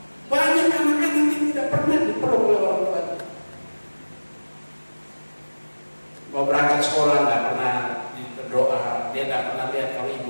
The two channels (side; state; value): both; inverted; correlation -1.00